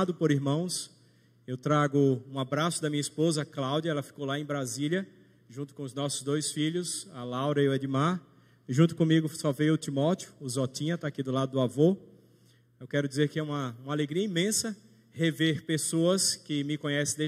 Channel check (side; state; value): both; identical; correlation 1.00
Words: por irmãos. Eu trago um abraço da minha esposa, Cláudia, ela ficou lá em Brasília, junto com os nossos dois filhos, a Laura e o Edmar. E junto comigo só veio o Timóteo, o Zotinha, está aqui do lado do avô. Eu quero dizer que é uma alegria imensa rever pessoas que me conhecem